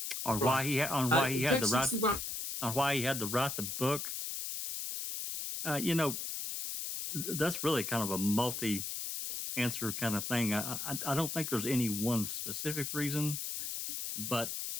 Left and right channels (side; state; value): left; noise; hiss, 4 dB below the sound